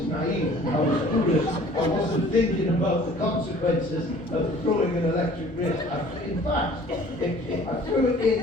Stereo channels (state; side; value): noise; left; hum, 23 dB below the sound